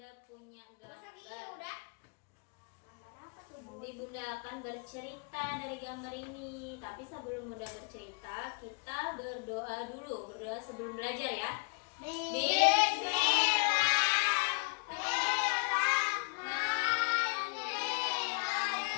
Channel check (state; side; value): quieter; right; 34.4 dB